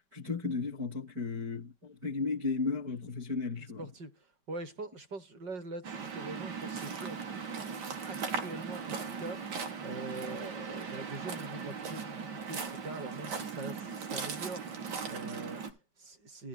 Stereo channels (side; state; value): left; late; 5.1 ms